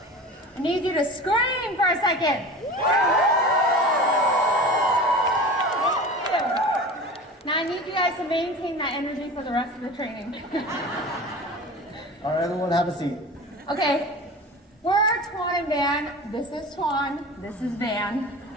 I need you to scream for a second. Now I need you guys to maintain that energy for the rest of the training. All right, everyone, have a seat. Okay, we're Tuan and Van. This is Tuan, this is Van.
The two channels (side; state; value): both; normal; correlation 0.35